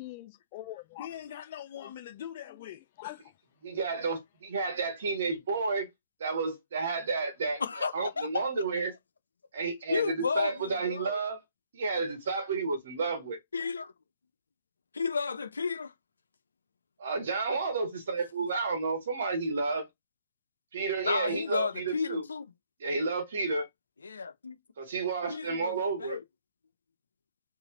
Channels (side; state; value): both; inverted; correlation -0.67